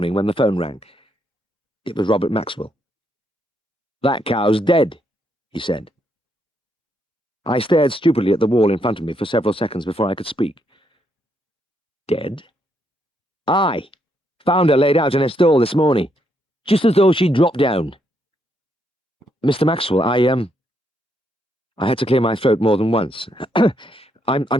when the phone rang. It was Robert Maxwell. That cow's dead, he said. I stared stupidly at the wall in front of me for several seconds before I could speak. Dead? Aye. Found her laid out in a stall this morning, just as though she'd dropped down. Mr. Maxwell, I had to clear my throat more than once.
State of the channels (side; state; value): both; normal; correlation 0.76